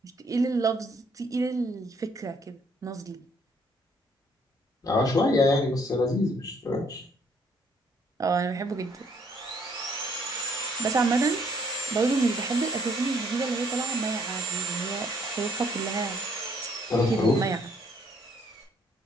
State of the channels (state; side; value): normal; both; correlation 0.64